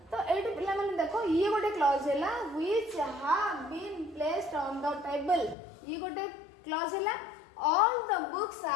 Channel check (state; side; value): drops out; right; at 5.6 s